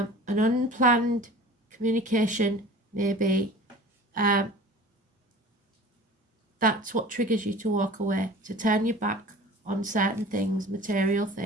unplanned communication maybe, that's what triggers you to walk away, to turn your back on certain things, material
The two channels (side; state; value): both; normal; correlation 0.41